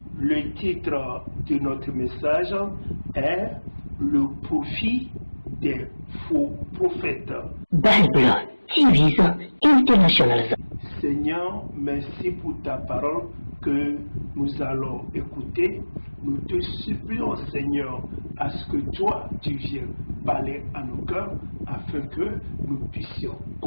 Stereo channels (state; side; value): inverted; both; correlation -1.00